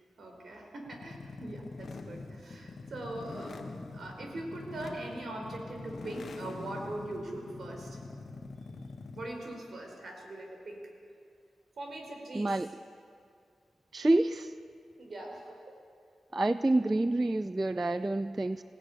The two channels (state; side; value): normal; both; correlation 0.96